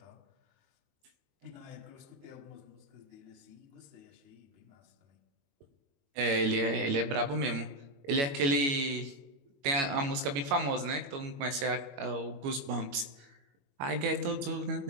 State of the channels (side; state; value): left; late; 22 ms